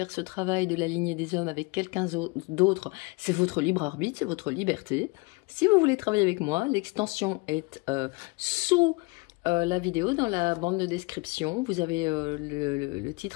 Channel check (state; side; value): quieter; right; 27.1 dB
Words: ce travail de la lignée des hommes avec quelqu'un d'autre, c'est votre libre arbitre, c'est votre liberté. Si vous voulez travailler avec moi, l'extension est sous la vidéo, dans la bande de description, vous avez le